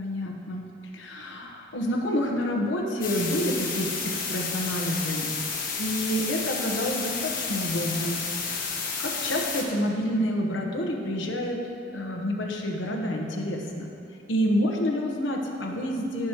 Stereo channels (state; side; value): normal; both; correlation 0.47